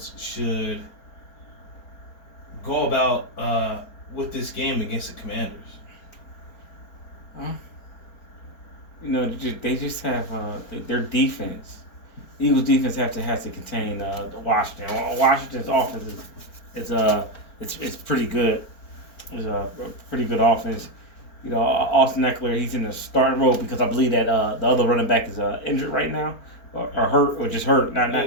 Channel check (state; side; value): late; right; 4.4 ms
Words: should go about with this game against the Commanders? They just have their defense. Eagles defense has to contain Washington. Washington's offense is pretty good. It's a pretty good offense. Austin Eckler, he's in the starting role because I believe that the other running back is injured right now or hurt or just hurt.